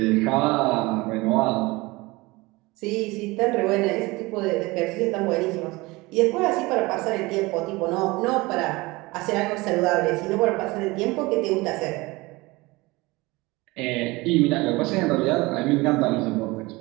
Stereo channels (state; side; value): quieter; left; 22.5 dB